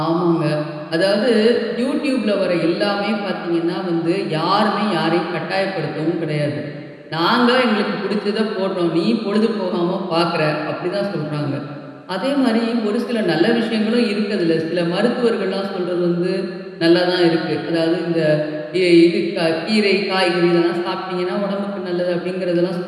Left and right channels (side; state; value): both; identical; correlation 1.00